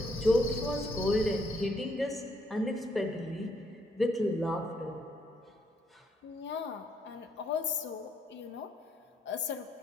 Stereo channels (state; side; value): normal; both; correlation 0.72